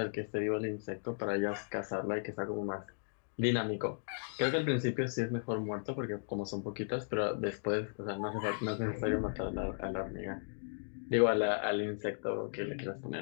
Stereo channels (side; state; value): right; silent; digital silence